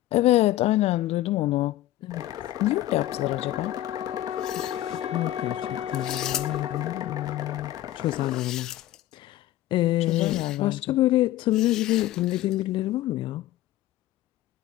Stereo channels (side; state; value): right; quieter; 14.5 dB